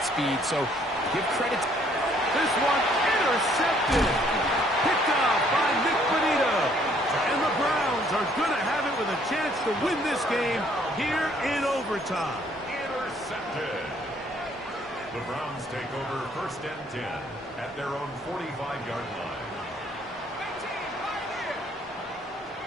speed, so give credit. This one intercepted. Picked up by Nick Bonito. And the Browns are going to have it with a chance to win this game here in overtime. Intercepted. The Browns take over 1st and 10 at their own 45-yard line.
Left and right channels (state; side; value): normal; both; correlation 0.63